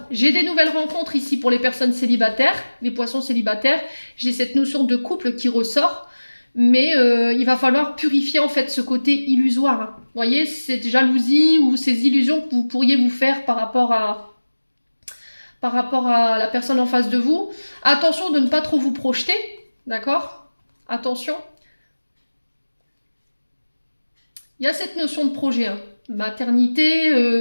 J'ai des nouvelles rencontres ici pour les personnes célibataires, les poissons célibataires. J'ai cette notion de couple qui ressort. Mais il va falloir purifier en fait ce côté illusoire. Hein. Vous voyez, cette jalousie ou ces illusions que vous pourriez vous faire par rapport à la personne en face de vous. Attention de ne pas trop vous projeter, d'accord? Attention. Il y a cette notion de projet, hein. Maternité,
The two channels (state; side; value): inverted; both; correlation -1.00